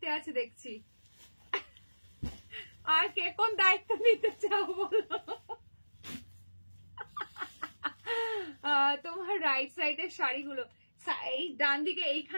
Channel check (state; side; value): inverted; both; correlation -1.00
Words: আছে দেখছি আর কে কোন দায়িত্ব নিতে চাও বলো তোমার রাইট সাইডের শাড়িগুলো এই ডান দিকে